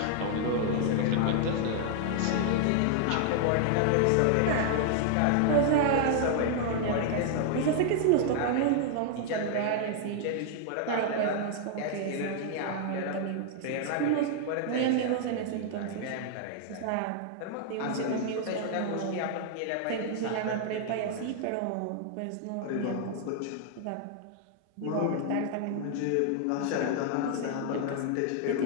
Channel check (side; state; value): both; different; correlation 0.00